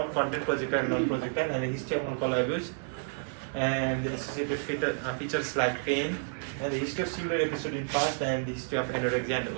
content, projectile, non-projectile, and a history of alcohol abuse, and the associated features like pain, and the history of similar episode in past, and the history of anorexia and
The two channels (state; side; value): silent; left; 58 dB below the other